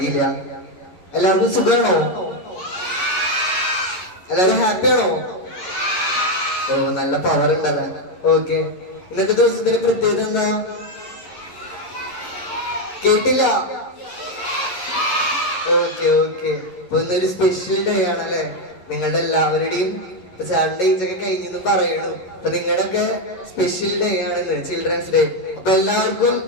എല്ലാവർക്കും സുഖമാണോ? എല്ലാവരും ഹാപ്പിയാണോ? ഓ, നല്ല പവർ ഉണ്ടല്ല. ഓക്കെ, ഇന്നത്തെ ദിവസത്തിന്റെ പ്രത്യേകത എന്താ? കേട്ടില്ല? ഓക്കെ ഓക്കെ, ഇപ്പൊ ഇന്നൊരു സ്പെഷ്യൽ ഡേ ആണല്ലേ. നിങ്ങളുടെ എല്ലാവരുടെയും സാറ്റർഡേസ് ഒക്കെ കഴിഞ്ഞെന്ന് പറയണു. അപ്പൊ നിങ്ങളുടെ ഒക്കെ സ്പെഷ്യൽ ഡേ ആണെന്ന്, ചിൽഡ്രൻസ് ഡേ. അപ്പൊ എല്ലാവർക്കും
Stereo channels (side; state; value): right; late; 11 ms